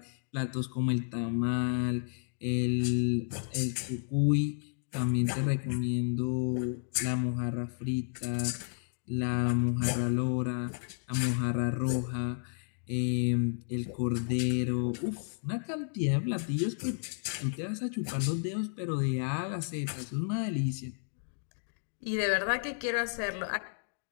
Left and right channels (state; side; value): silent; right; digital silence